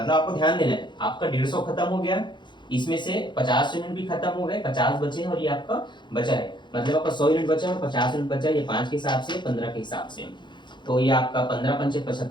आपको ध्यान देना है, आपका 150 खत्म हो गया, इसमें से 50 यूनिट भी खत्म हो गए, 50 बचे हैं और ये आपका बचा है, मतलब आपका 100 यूनिट बचा है, 50 यूनिट बचा है, ये 5 के हिसाब से 15 के हिसाब से, तो ये आपका 15 पंचे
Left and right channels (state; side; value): late; right; 0.22 ms